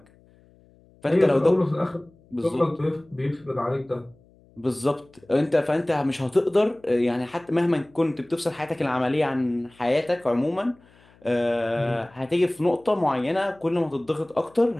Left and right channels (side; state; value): left; noise; hum, 29 dB below the sound